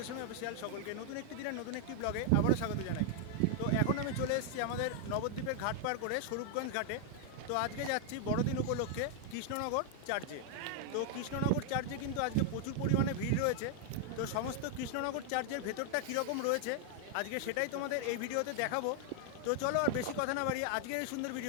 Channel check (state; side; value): different; both; correlation 0.00